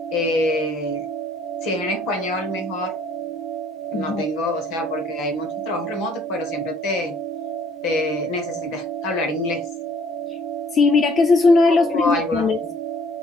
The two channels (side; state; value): both; normal; correlation 0.60